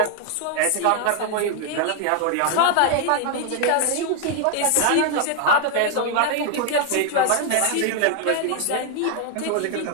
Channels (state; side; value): different; both; correlation 0.01